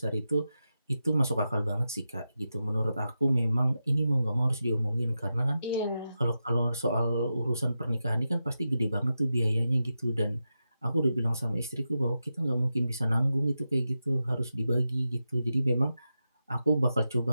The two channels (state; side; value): inverted; both; correlation -0.90